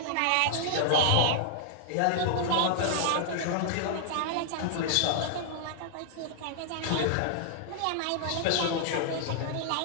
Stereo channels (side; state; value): both; different; correlation 0.00